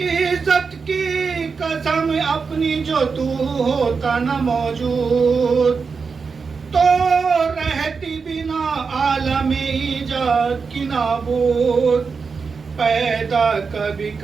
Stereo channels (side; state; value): left; quieter; 5.1 dB